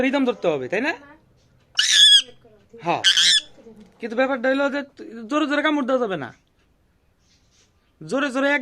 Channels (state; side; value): identical; both; correlation 1.00